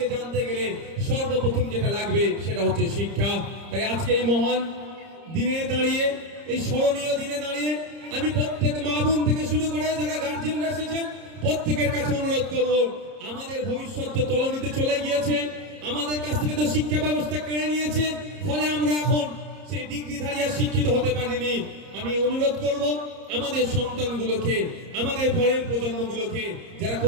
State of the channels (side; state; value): left; late; 30 ms